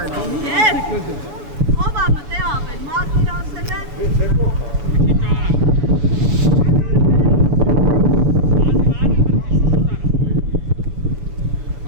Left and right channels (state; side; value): late; left; 7.0 ms